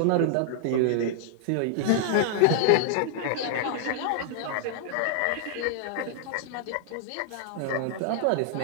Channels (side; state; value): both; different; correlation 0.00